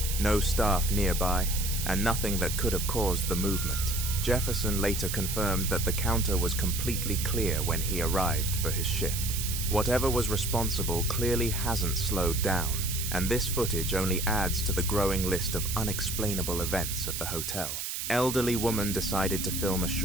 no staff nearby, and nothing that could have caused the movement. Jefferson later confirmed that the counter was completely clear when he arrived for his shift. Whatever was responsible clearly hasn't slowed down, and this footage only adds to the growing list of unexplainable events at the hotel. Elderly woman decided to film a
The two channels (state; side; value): noise; right; hiss, 4 dB below the sound